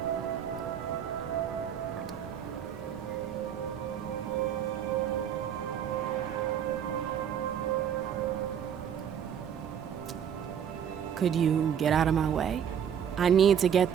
Could you get out of my way? I need to get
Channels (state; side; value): quieter; left; 8.7 dB